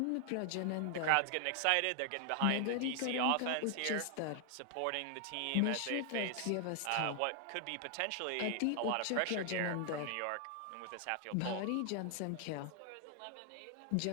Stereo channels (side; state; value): both; different; correlation 0.00